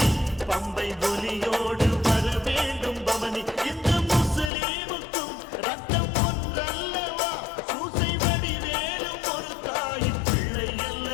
பம்பை ஒலியோடு வர வேண்டும் பவனி. இந்த முஸ்லீமுக்கும் ரத்தம் ஒன்றல்லவா, சூசை வடிவேலும் ஒரு தாயின் பிள்ளை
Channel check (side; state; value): right; drops out; at 4.5 s